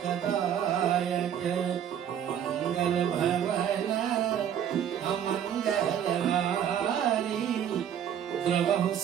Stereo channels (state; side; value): quieter; left; 9.3 dB